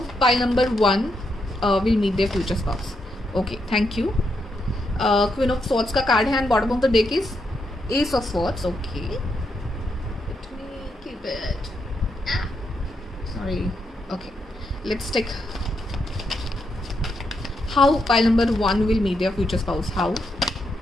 pile number 1 will meet their future spouse. Okay, thank you. Queen of swords का कार्ड है and bottom of the deck is ace of swords. Okay, let me keep it. Sorry. Okay, let's take how pile number 1 will meet their future spouse. How?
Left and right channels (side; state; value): both; normal; correlation 0.81